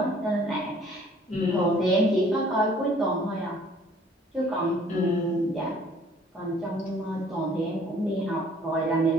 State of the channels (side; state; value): both; normal; correlation 0.56